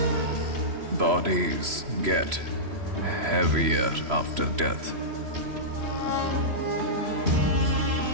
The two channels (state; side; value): late; left; 3.0 ms